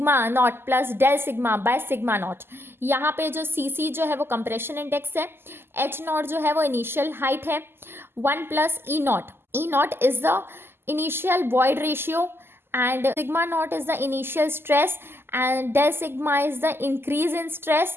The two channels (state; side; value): late; left; 0.11 ms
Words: naught plus del sigma by sigma naught. यहाँ पे जो CC जो है वो compression index है, H naught जो है वो initial height है, 1 plus E naught. E naught is the initial void ratio and sigma naught is the initial stress and del sigma is the increase in stress